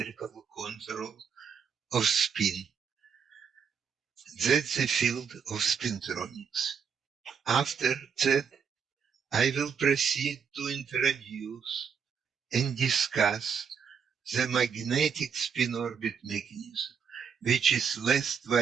control of spin. That's the field of spintronics. After that, I will proceed to introduce and discuss the magnetic spin-orbit mechanism, which is less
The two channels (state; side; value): quieter; left; 6.7 dB